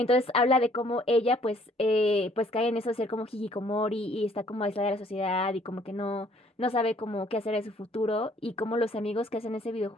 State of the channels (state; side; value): normal; both; correlation 0.61